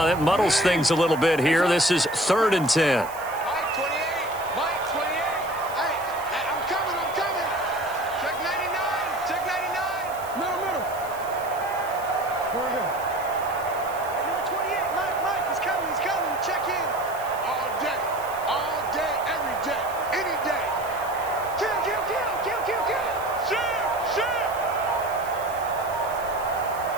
That muddles things a little bit here. This is 3rd and 10.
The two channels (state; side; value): noise; right; hiss, 17 dB below the sound